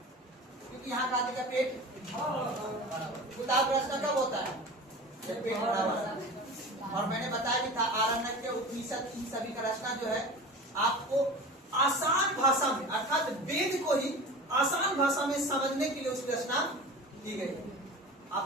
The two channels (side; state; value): both; normal; correlation 0.34